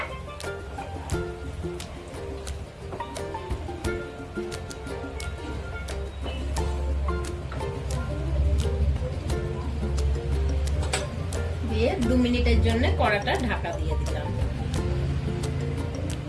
দিয়ে 2 মিনিটের জন্য কড়াটা ঢাকা দিয়ে দিলাম।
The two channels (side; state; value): both; identical; correlation 1.00